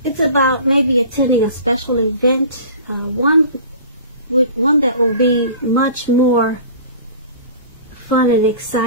it's about maybe attending a special event, one that will be much more fun and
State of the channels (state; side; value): inverted; both; correlation -0.42